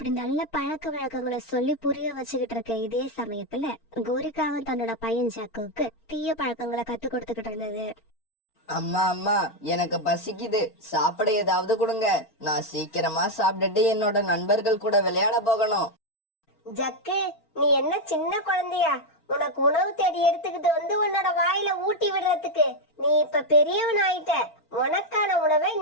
நல்ல பழக்க வழக்கங்களை சொல்லி புரிய வச்சுக்கிட்டு இருக்க இதே சமயத்துல கோரிக்காவும் தன்னோட பையன் ஜாக்குவுக்கு தீய பழக்கங்களை கத்து கொடுத்துக்கிட்டு இருந்தது. அம்மா அம்மா, எனக்கு பசிக்குது, சாப்பிட ஏதாவது கொடுங்க. நான் சீக்கிரமா சாப்பிட்டுட்டு என்னோட நண்பர்கள் கூட விளையாட போகணும். ஜக்கு, நீ என்ன சின்ன குழந்தையா? உனக்கு உணவு தேடி எடுத்துக்கிட்டு வந்து உன்னோட வாயில ஊட்டி விடுறதுக்கு. நீ இப்ப பெரியவன் ஆயிட்ட. உனக்கான உணவை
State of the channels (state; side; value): late; right; 4.4 ms